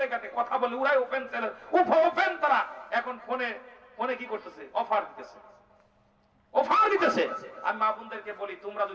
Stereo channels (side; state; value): both; identical; correlation 1.00